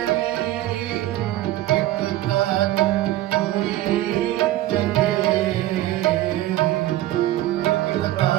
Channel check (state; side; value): quieter; left; 15.1 dB